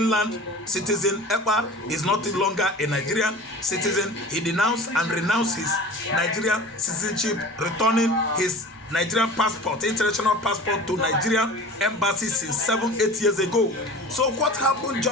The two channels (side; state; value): both; normal; correlation 0.39